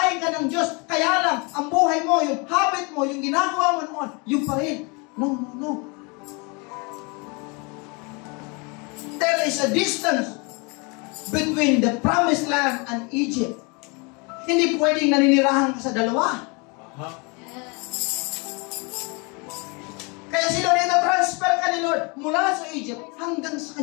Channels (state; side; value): quieter; right; 30.5 dB